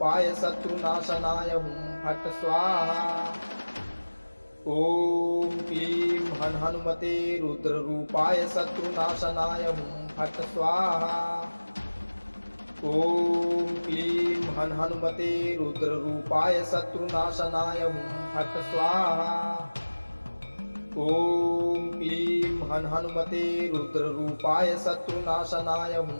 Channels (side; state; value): both; inverted; correlation -1.00